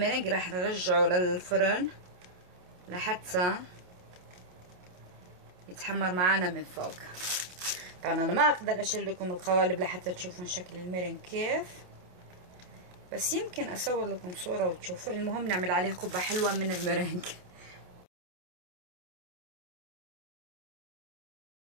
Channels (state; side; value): late; left; 28 ms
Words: رح نرجعه للفرن لحتى يتحمر معانا من فوق. طبعا انا ما اقدر اشيل لكم القوالب لحتى تشوفون شكل الميرينج كيف، بس يمكن اصور لكم صورة وتشوفوا. المهم نعمل عليه قبة حلوة من الميرينج.